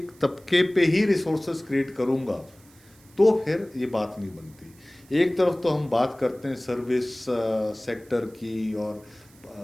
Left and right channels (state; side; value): noise; right; hiss, 28 dB below the sound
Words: तबके पे ही रिसोर्सेस क्रिएट करूंगा, तो फिर ये बात नहीं बनती। एक तरफ तो हम बात करते हैं सर्विस सेक्टर की और